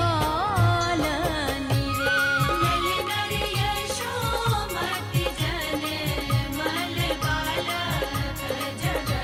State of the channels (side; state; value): both; identical; correlation 1.00